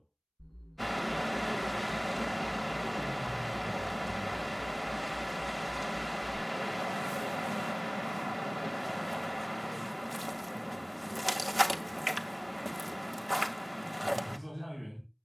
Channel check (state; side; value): identical; both; correlation 1.00